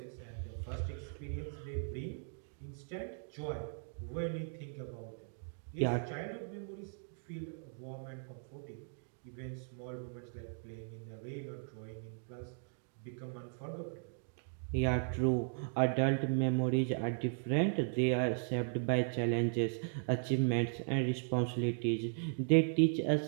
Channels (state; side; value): silent; left; digital silence